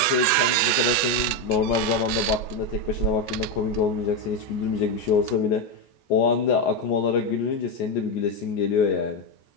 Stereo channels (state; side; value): late; right; 14 ms